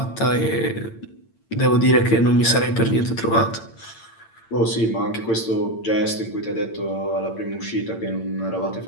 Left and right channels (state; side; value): late; right; 8.9 ms